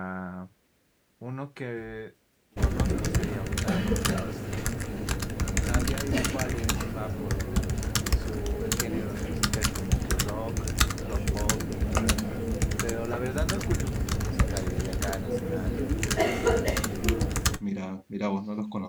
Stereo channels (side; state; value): both; identical; correlation 1.00